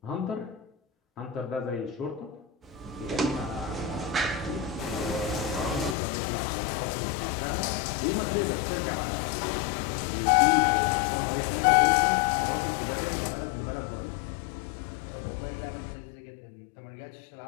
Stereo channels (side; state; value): right; drops out; at 6.0 s